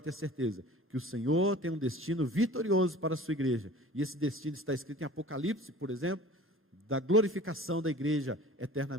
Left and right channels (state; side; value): normal; both; correlation 0.43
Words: ter certeza que o Senhor tem um destino vitorioso para a sua igreja, e esse destino está escrito em Apocalipse, por exemplo, da glorificação da igreja